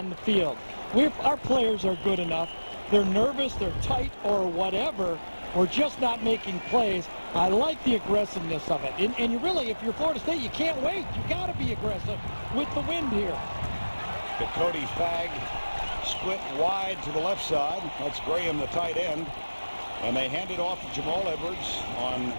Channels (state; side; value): inverted; both; correlation -1.00